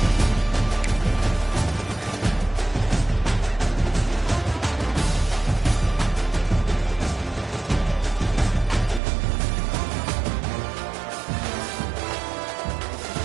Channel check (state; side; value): drops out; left; at 9.0 s